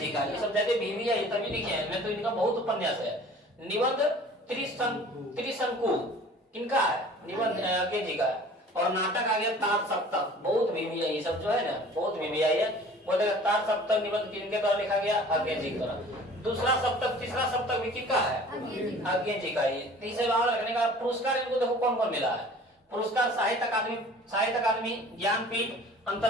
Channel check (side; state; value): both; normal; correlation 0.47